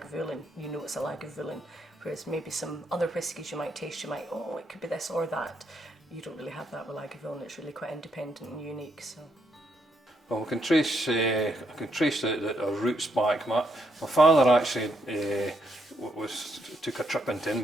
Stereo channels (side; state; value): both; normal; correlation 0.76